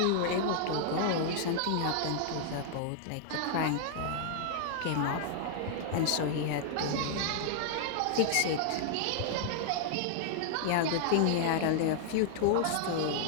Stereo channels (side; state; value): both; different; correlation -0.01